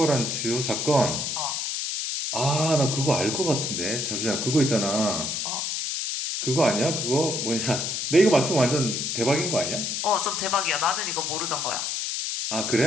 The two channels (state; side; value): noise; left; hiss, 2 dB below the sound